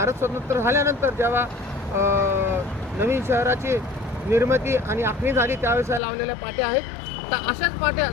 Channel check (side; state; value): right; drops out; at 6.0 s